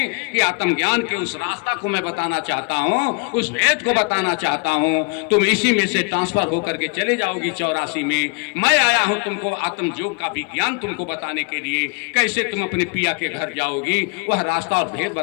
कि आत्मज्ञान के उस रास्ता को मैं बताना चाहता हूँ, उस वेद को बताना चाहता हूँ। तुम इसी में से ट्रांसफर होकर के चले जाओगी 84 में। मैं आया हूँ तुमको आत्मयोग का विज्ञान तुमको बताने के लिए, कैसे तुम अपने पिया के घर जाओगी, वह रास्ता और भेद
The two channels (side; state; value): right; quieter; 32.0 dB